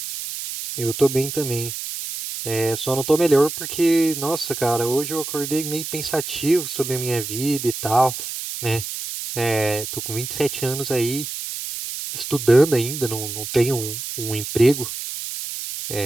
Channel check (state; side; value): noise; right; hiss, 7 dB below the sound